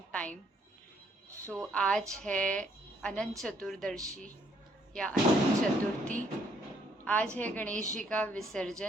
time. So आज है अनंत चतुर्दशी या अनंत चतुर्थी। आज है गणेश जी का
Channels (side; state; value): both; normal; correlation 0.68